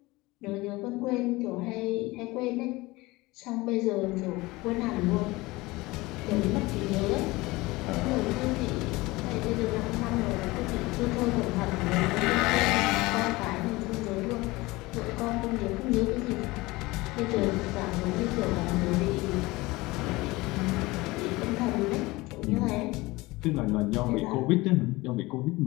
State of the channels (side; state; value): right; quieter; 21.3 dB